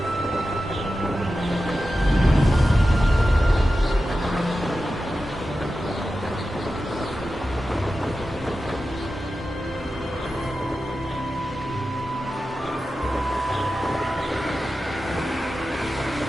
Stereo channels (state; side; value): normal; both; correlation 0.92